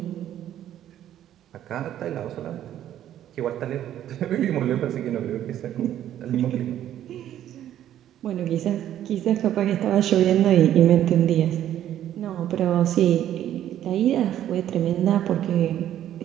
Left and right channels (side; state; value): left; quieter; 11.5 dB